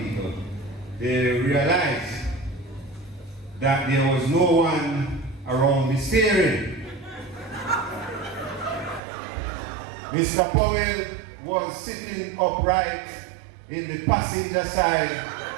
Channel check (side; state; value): left; drops out; at 9.0 s